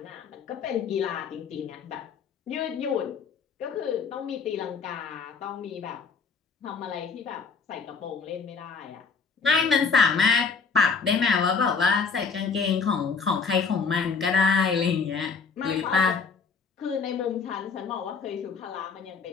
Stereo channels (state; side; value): quieter; right; 5.4 dB